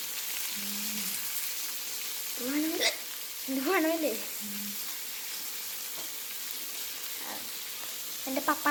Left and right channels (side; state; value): both; identical; correlation 1.00